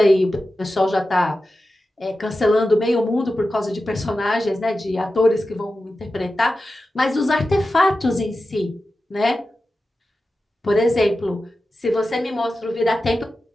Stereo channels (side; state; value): both; normal; correlation 0.92